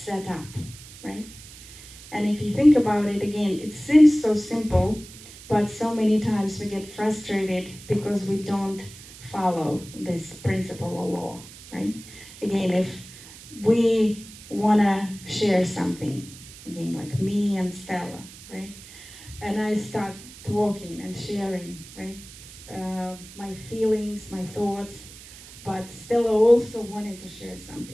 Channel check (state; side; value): noise; right; hiss, 17 dB below the sound